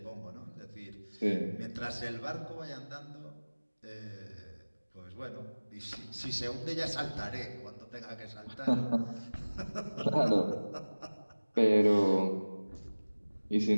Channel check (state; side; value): inverted; both; correlation -1.00